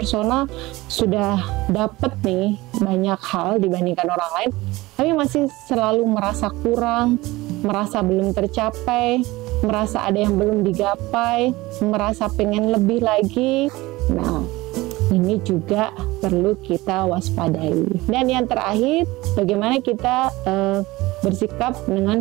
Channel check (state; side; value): quieter; left; 19.9 dB